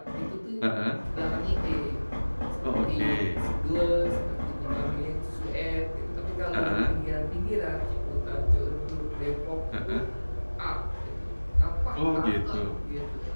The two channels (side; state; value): both; inverted; correlation -1.00